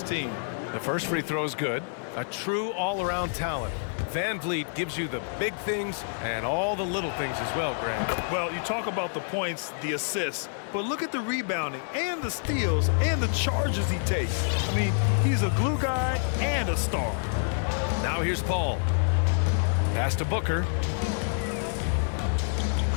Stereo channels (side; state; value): right; silent; digital silence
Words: team. The first free throw is good. A true all-around talent. Van Vliet gives you the big things and all the little things as well, Grant. Well, you talk about the points, the assists, but look at the rebounding and the steals and the charges he takes. I mean, he's a glue guy and a star. Now here's Paul. Pass to Booker.